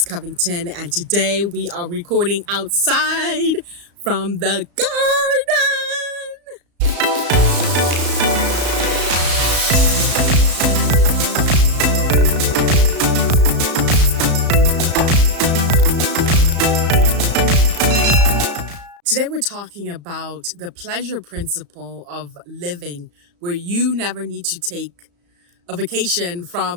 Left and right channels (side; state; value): left; late; 35 ms